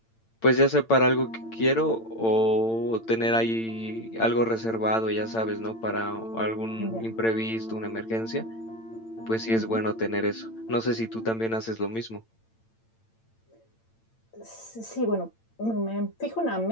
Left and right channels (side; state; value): right; late; 8.9 ms